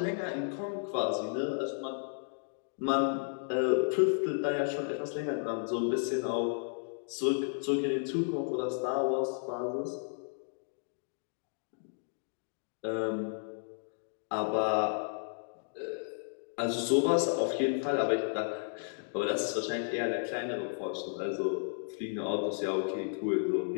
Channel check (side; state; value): right; silent; digital silence